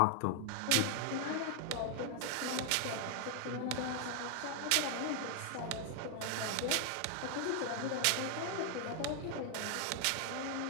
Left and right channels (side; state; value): both; different; correlation 0.00